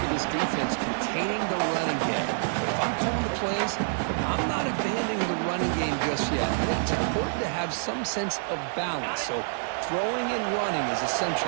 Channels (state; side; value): silent; left; 60 dB below the other